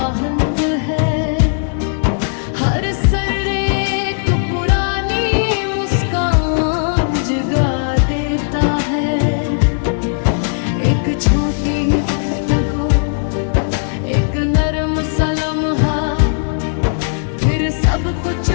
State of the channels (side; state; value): right; silent; digital silence